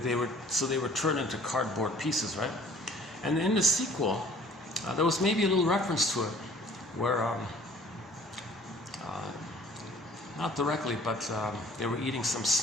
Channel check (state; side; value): normal; both; correlation 0.53